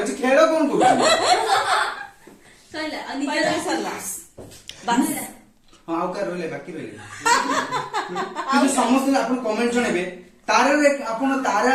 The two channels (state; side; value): identical; both; correlation 1.00